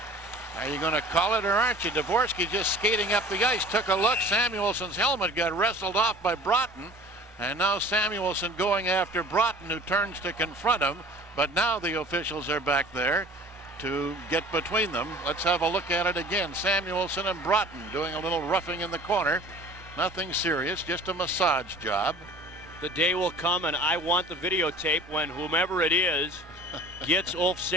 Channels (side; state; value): both; normal; correlation 0.45